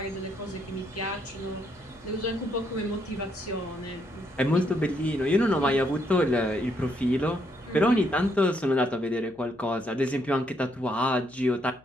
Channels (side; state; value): left; noise; hum, 29 dB below the sound